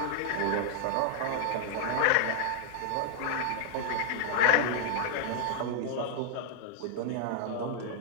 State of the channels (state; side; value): different; both; correlation 0.00